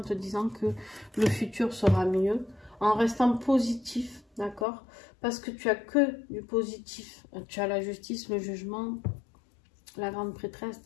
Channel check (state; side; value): drops out; right; at 4.7 s